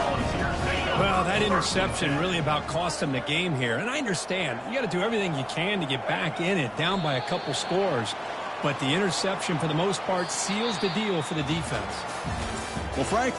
Well, that interception really about cost them the game here. And I understand. You got to do everything you can to get back in it, down by a couple scores. But the interception, for the most part, seals the deal for the defense. Well,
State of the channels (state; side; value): identical; both; correlation 1.00